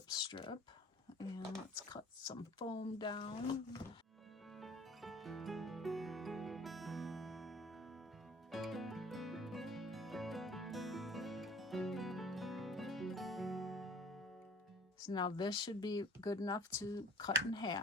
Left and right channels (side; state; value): both; normal; correlation 0.49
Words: strip, and let's cut some foam down. So now this should be good enough to cut in